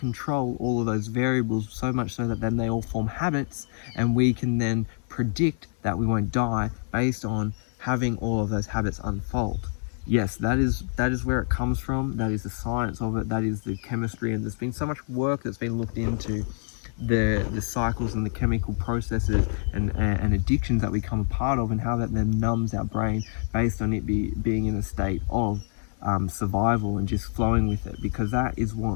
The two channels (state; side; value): silent; right; 61 dB below the other